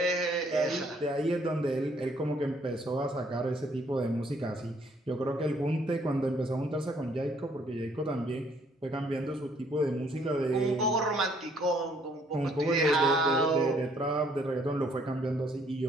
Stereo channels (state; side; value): normal; both; correlation 0.65